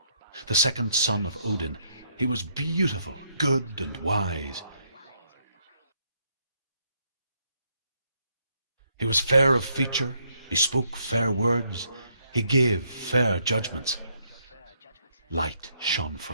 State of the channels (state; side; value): inverted; both; correlation -0.73